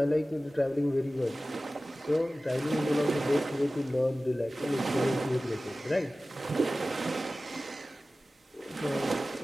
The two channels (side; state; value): both; normal; correlation 0.96